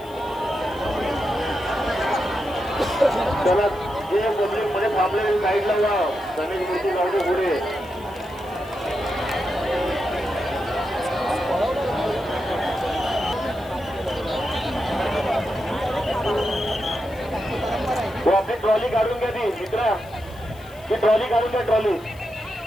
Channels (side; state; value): left; noise; hiss, 25 dB below the sound